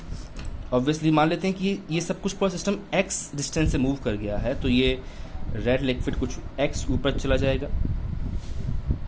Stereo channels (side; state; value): both; identical; correlation 1.00